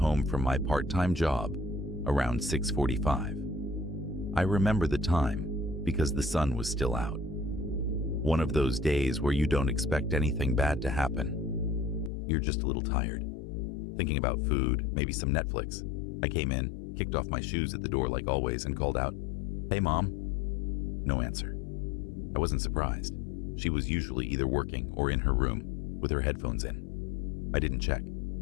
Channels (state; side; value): drops out; right; at 12.1 s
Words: from my part-time job around 6:45. I remember the time because the sun was still out. One of those days where you don't expect anything bad to happen. You're just a little tired, thinking about food, maybe some Netflix. I came in, kicked off my shoes at the door like always, and called out, "Hey, Mom." No answer. I wasn't surprised. She was usually either working or in her room with her headphones in. I didn't check.